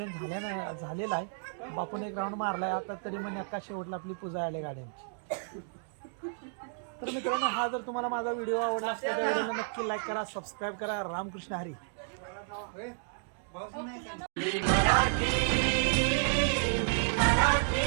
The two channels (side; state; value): left; silent; digital silence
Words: झालेलं आहे. बापून एक राऊंड मारलाय आता तरी मन्याका शेवटला आपली पूजा आली गाडी आमची. तर मित्रांनो हा जर तुम्हाला माझा व्हिडिओ आवडला असला त्या व्हिडिओला नक्की लाईक करा, सबस्क्राईब करा. रामकृष्ण हरी.